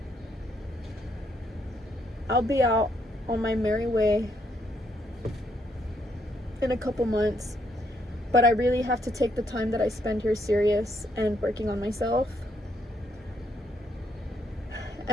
I'll be out on my merry way in a couple months, but I really have to take the time that I spend here serious and working on myself.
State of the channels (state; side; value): normal; both; correlation 0.74